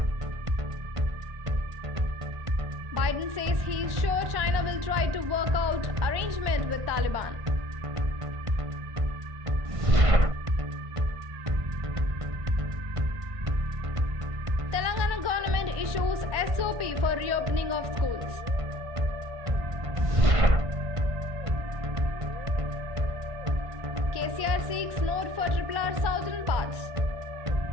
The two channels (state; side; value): late; left; 1.1 ms